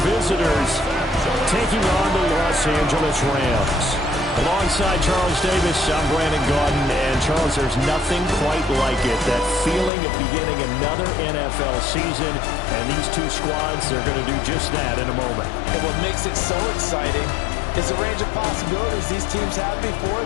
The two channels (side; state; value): right; drops out; at 9.9 s